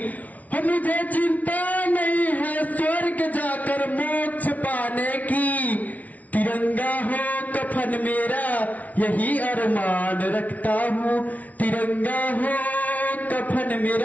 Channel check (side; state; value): right; late; 0.071 ms